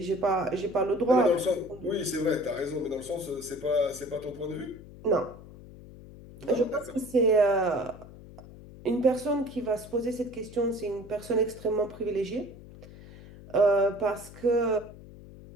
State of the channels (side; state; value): left; noise; hum, 18 dB below the sound